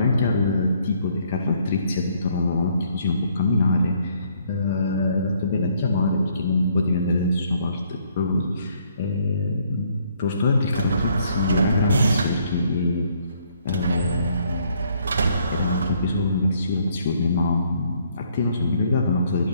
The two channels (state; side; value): inverted; both; correlation -0.67